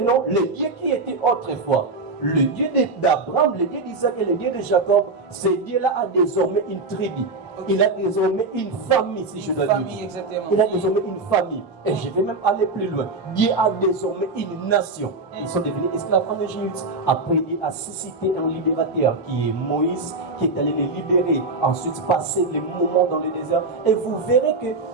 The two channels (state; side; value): quieter; left; 3.5 dB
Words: le Dieu qui était autrefois, le Dieu d'Abraham, le Dieu d'Isaac et le Dieu de Jacob, ce Dieu-là a désormais une tribu. Okay. Il a désormais une famille, si je dois dire. Exactement. Il a désormais une famille. Et je vais même aller plus loin. Dieu a désormais une nation. Ils sont devenus esclaves en Égypte. Après, il a suscité un libérateur qui est Moïse, qui est allé les libérer. Ensuite, passer les moments dans le désert. Et vous verrez que